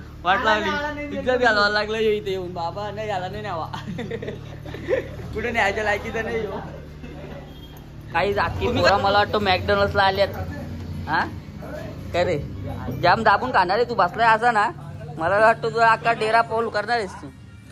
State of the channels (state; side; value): identical; both; correlation 1.00